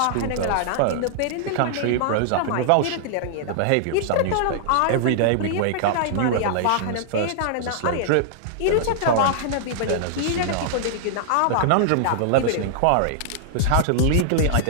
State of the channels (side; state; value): both; different; correlation -0.01